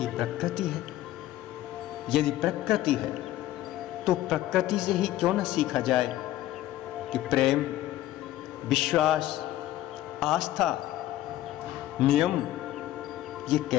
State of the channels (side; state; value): right; quieter; 14.4 dB